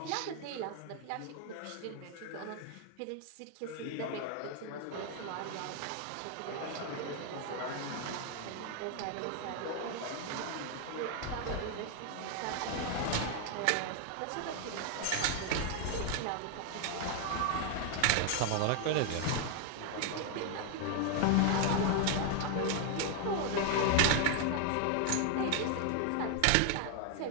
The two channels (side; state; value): both; different; correlation 0.00